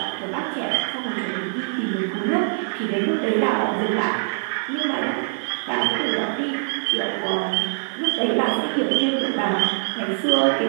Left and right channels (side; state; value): left; silent; digital silence